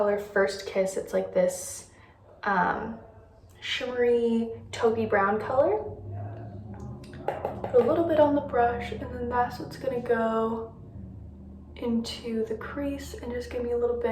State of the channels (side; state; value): both; identical; correlation 1.00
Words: First Kiss. It's like this shimmery taupey brown color. Put a little bit on the brush, and then that's what's gonna go into the crease and just give me a little